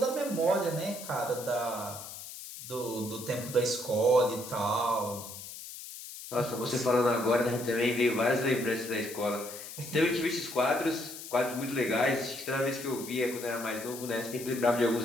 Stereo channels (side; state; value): left; noise; hiss, 12 dB below the sound